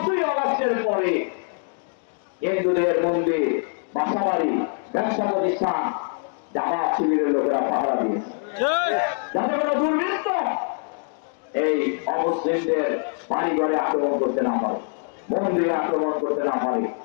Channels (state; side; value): silent; right; 55 dB below the other